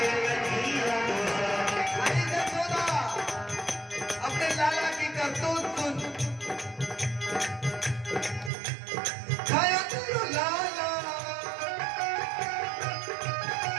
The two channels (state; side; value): drops out; left; at 8.5 s